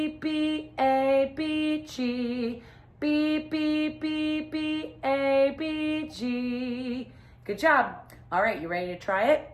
B, A, B, G. B, B, B, B, A, B, G. Good job. All right, you ready to try it?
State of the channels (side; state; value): both; identical; correlation 1.00